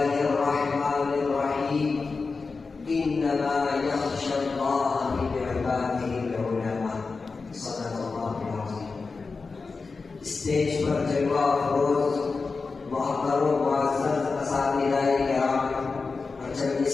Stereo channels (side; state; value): right; quieter; 4.3 dB